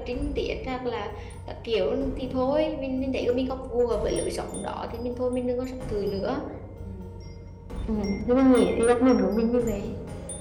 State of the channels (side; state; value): both; identical; correlation 1.00